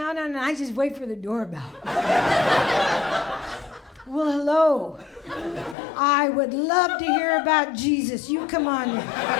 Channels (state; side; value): drops out; right; at 5.8 s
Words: on, and I just wait for the doorbell. Well, hello. I would love to hear about Jesus. You come on in.